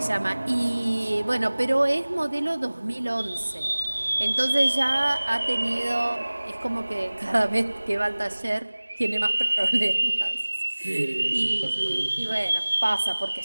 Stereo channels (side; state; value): both; inverted; correlation -1.00